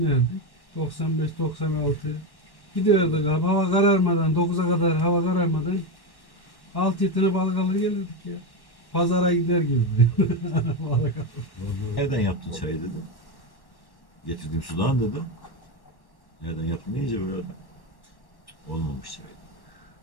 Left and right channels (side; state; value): right; late; 1.1 ms